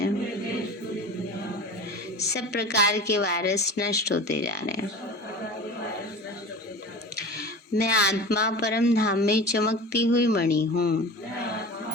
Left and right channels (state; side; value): normal; both; correlation 0.34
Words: सब प्रकार के वायरस नष्ट होते जा रहे हैं। मैं आत्मा परम धाम में चमकती हुई मणि हूँ।